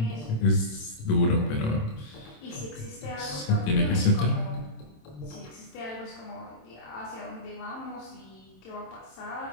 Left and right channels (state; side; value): late; right; 27 ms